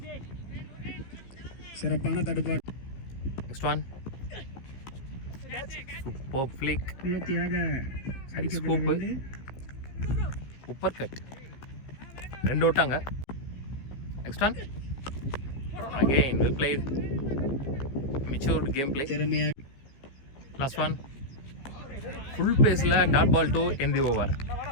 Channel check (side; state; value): right; late; 15 ms